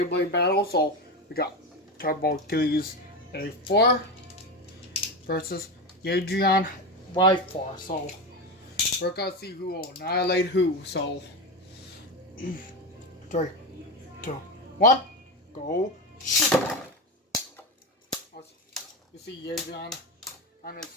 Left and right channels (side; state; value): both; normal; correlation 0.18